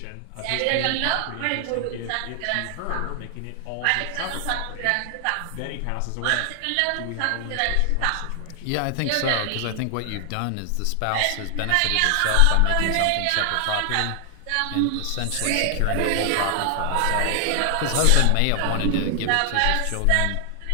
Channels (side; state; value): both; different; correlation 0.00